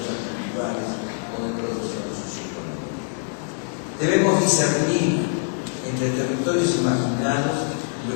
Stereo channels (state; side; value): silent; right; digital silence